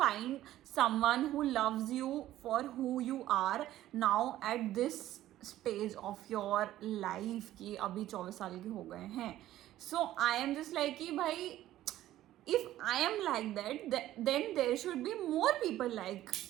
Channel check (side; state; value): left; quieter; 13.9 dB